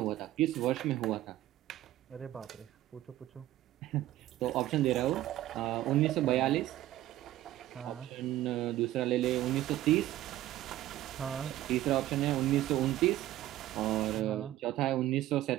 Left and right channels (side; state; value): left; quieter; 14.5 dB